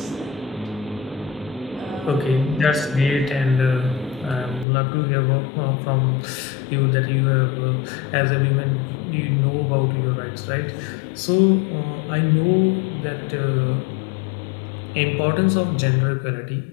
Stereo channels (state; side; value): drops out; right; at 4.7 s